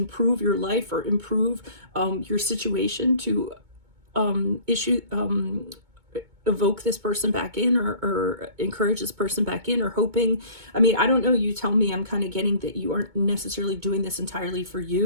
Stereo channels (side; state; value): left; late; 2.2 ms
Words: your life, or improve your situation to evoke this person back in, or encourage this person back in, or hoping. I don't know, you tell me. I'm kind of getting that you aren't necessarily doing this entirely for